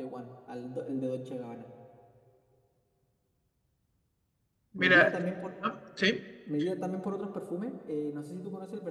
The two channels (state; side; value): identical; both; correlation 1.00